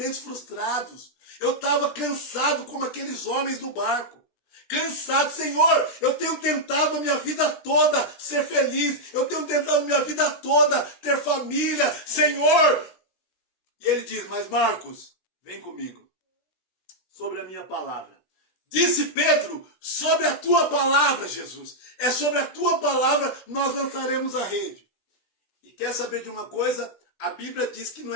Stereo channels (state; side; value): late; right; 16 ms